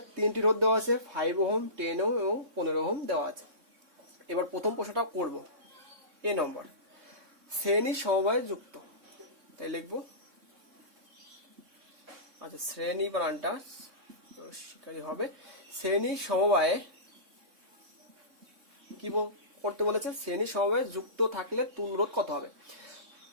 তিনটি রোধ দেওয়া আছে, 5 ওহম, 10 ওহম এবং 15 ওহম দেওয়া আছে। এবার প্রথম প্রশ্নটা করব, এ নম্বর, শ্রেণী সমবায়ে যুক্ত, তাই লিখবো। আচ্ছা, শ্রেণী বানানটা শিকারী হবে। শ্রেণী সমবায়ে কি করতে বলেছে? শ্রেণী সমবায়ে যুক্ত থাকলে তুল্য রোধ কত হবে?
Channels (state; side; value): late; left; 3.6 ms